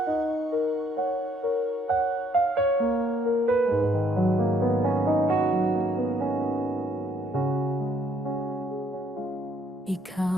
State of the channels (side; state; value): both; normal; correlation 0.68